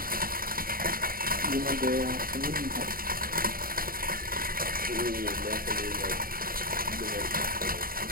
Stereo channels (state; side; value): late; left; 0.42 ms